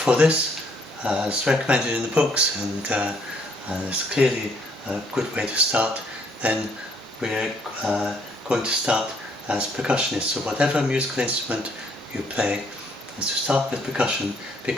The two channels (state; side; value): normal; both; correlation 0.67